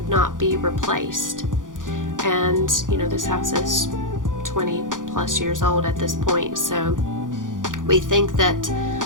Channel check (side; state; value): left; late; 0.88 ms